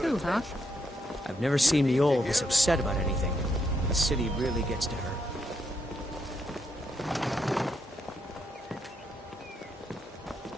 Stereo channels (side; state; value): both; normal; correlation 0.78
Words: too, huh? attention. I've never seen the old this upset about anything. The city really gets to her.